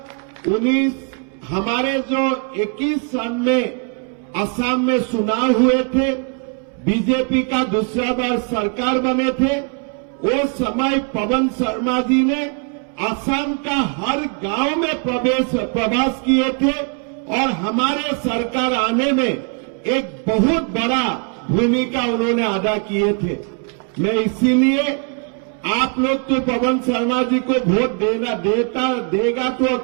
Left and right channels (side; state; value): left; quieter; 37.9 dB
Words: हमारे जो 21 सन में असम में चुनाव हुए थे, बीजेपी का दूसरा बार सरकार बने थे, वो समय पवन शर्मा जी ने असम का हर गांव में प्रवास किए थे और हमारे सरकार आने में एक बहुत बड़ा भूमिका उन्होंने अदा किए थे। मैं इसीलिए आप लोग तो पवन शर्मा जी को वोट देगा तो